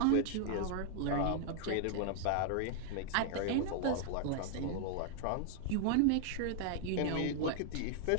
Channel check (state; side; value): different; both; correlation 0.00